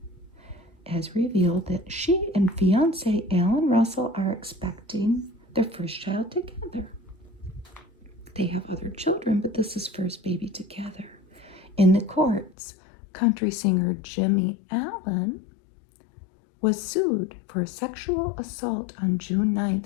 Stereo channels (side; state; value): right; drops out; at 12.6 s